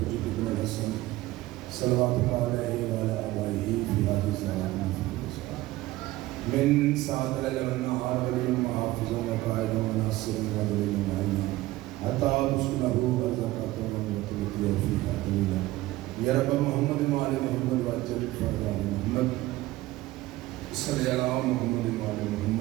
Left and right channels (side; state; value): left; quieter; 17.6 dB